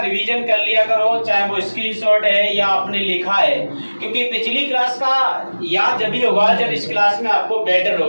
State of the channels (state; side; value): inverted; both; correlation -1.00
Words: कर लिया करो, चाहे वो स्क्रीनशॉट है या आपने लिखा है, क्योंकि पिछली क्लास का याद जब भी होगा जब इस क्लास में आपको बेटर